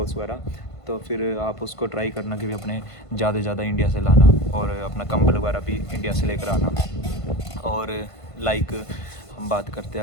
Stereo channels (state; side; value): late; right; 1.5 ms